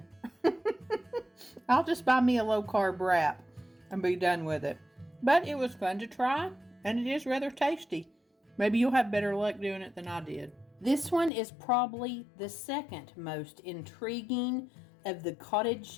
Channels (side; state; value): right; drops out; at 11.3 s